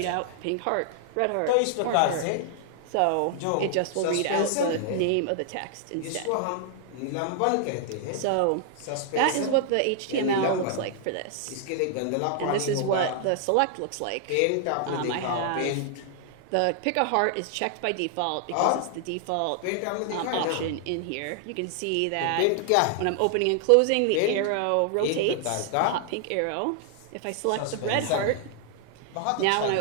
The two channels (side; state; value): both; different; correlation 0.00